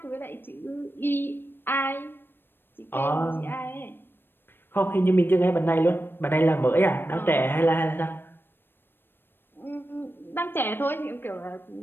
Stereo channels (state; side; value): late; right; 0.098 ms